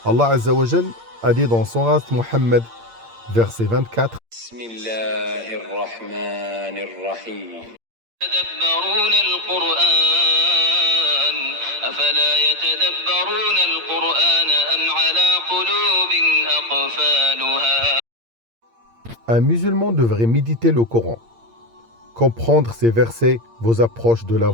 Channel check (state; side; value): late; left; 8.7 ms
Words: Allah Azza wa Jal a dit dans Surat Muhammad, verset 24, Bismillahirrahmanirrahim. يتدبرون القرآن أفلا يتدبرون القرآن أم على قلوب أقفالها. Un musulman devrait méditer le Coran. Comprendre ces versets vous approche de la